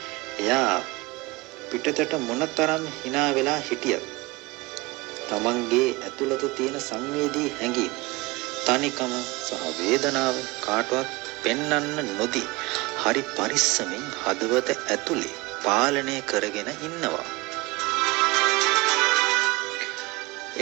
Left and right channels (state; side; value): quieter; left; 23.1 dB